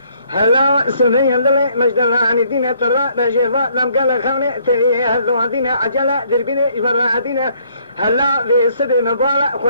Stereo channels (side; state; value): both; inverted; correlation -0.66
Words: هلا سنين دلي مجدلاني دينا ترى بجيفات لم قال خاني تري هلو دينا عجلة دربيني فرادينا هلا في سبي مبالة